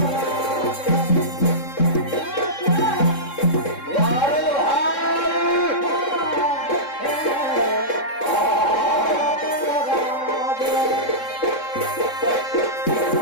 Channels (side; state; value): right; late; 3.7 ms